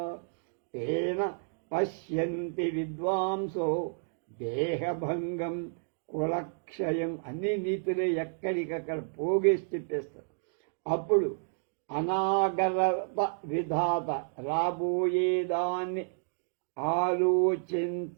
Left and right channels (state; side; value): silent; left; digital silence